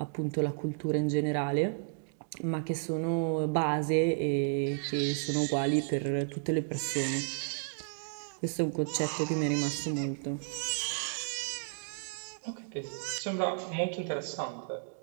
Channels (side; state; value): left; silent; digital silence